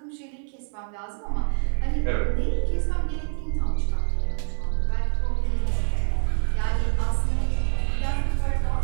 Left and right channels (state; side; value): silent; left; 62 dB below the other